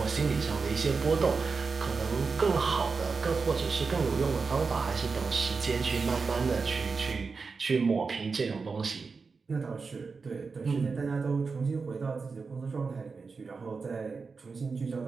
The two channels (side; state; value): left; quieter; 4.7 dB